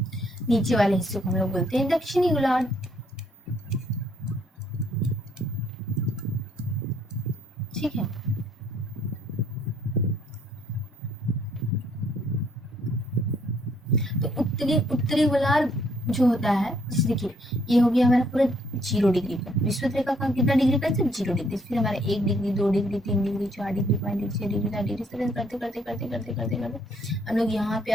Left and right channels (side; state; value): both; normal; correlation 0.67